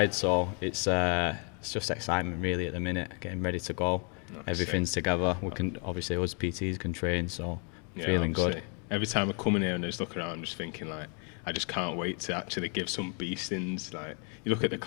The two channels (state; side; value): quieter; right; 38.3 dB